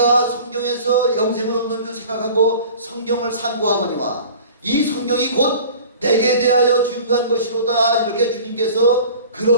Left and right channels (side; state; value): both; inverted; correlation -0.43